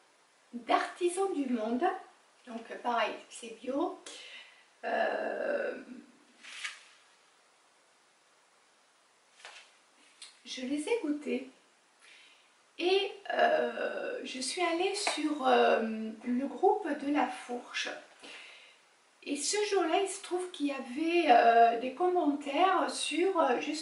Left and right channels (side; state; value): both; identical; correlation 1.00